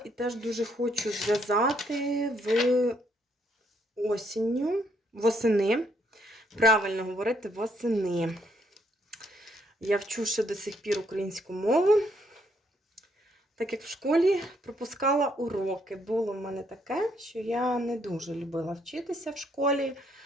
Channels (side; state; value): both; normal; correlation 0.71